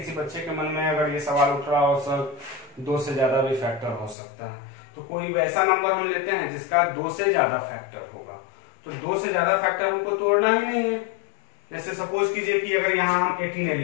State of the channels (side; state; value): right; drops out; at 4.2 s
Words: बच्चे के मन में अगर ये सवाल उठ रहा हो सर 2 से ज्यादा भी फैक्टर हो सकता है, तो कोई वैसा नंबर हम लेते हैं जिसका 2 से ज्यादा फैक्टर होगा। तो 2 से ज्यादा फैक्टर हमको तोड़ना ही नहीं है। जैसे सपोज कीजिए कि अगर यहाँ हम 18